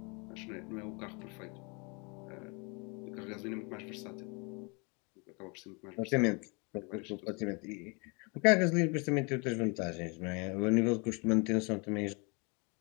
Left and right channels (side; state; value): right; quieter; 31.8 dB